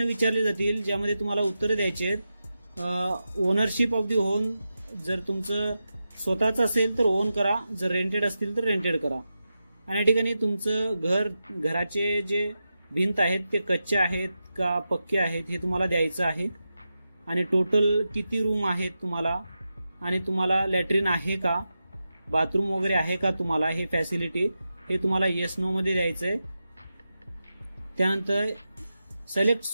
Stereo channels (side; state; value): both; inverted; correlation -0.90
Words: विचारले जातील ज्यामध्ये तुम्हाला उत्तरं द्यायची आहेत. ओनरशिप ऑफ दी होम जर तुमचं स्वतःच असेल तर ओन करा, जर रेंटेड असतील तर रेंटेड करा. आणि या ठिकाणी तुमचं घराचे जे भिंत आहेत ते कच्चे आहेत का पक्के आहेत हे तुम्हाला द्यायचं आहे. आणि टोटल किती रूम आहेत तुम्हाला आणि तुम्हाला लॅट्रिन आहे का बाथरूम वगैरे आहे का तुम्हाला हे फॅसिलिटी हे तुम्हाला येस नो मध्ये द्यायचं आहे. त्यानंतर select